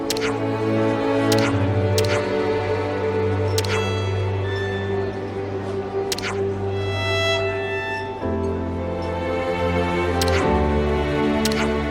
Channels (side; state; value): both; identical; correlation 1.00